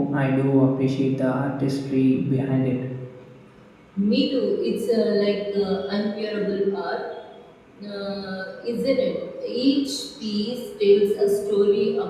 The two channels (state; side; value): identical; both; correlation 1.00